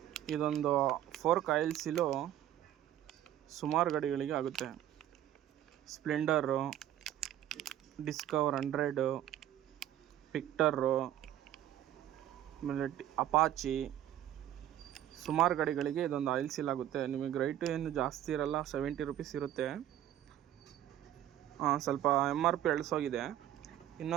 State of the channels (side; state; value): left; quieter; 12.1 dB